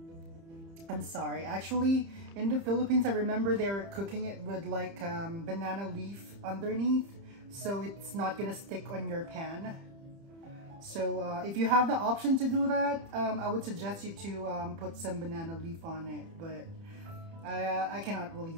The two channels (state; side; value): late; left; 30 ms